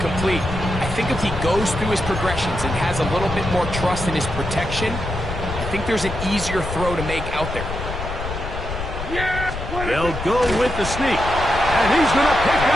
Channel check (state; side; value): noise; left; rumble, 7 dB below the sound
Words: I think if he goes through his progressions and has a little bit more trust in his protection, I think there's an easier throw to make out there. They'll go with the sneak. And he's going to pick